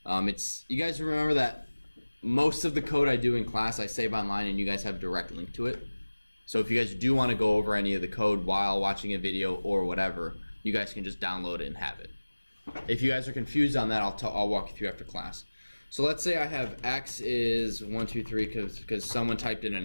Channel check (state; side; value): inverted; both; correlation -1.00